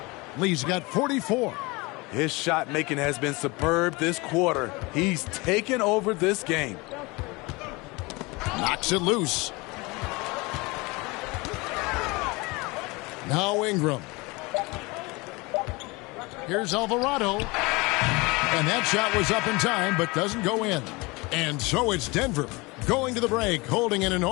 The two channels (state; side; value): quieter; right; 24.8 dB